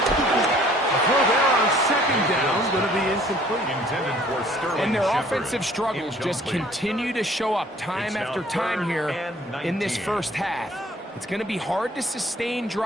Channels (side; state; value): both; normal; correlation 0.56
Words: A throw there on 2nd down, going to be incomplete. Intended for Sterling And their Shepard. offensive struggles just continue to show up time after time here in this first half. It's going to be hard to sustain